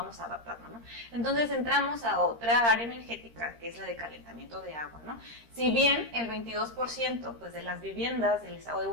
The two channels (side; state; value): left; late; 13 ms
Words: adaptando, ¿no? Entonces entramos a otra área energética que es la de calentamiento de agua, ¿no? Si bien el 22% pues, de las viviendas del estado de